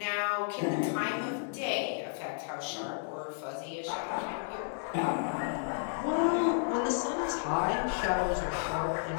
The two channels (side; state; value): right; silent; digital silence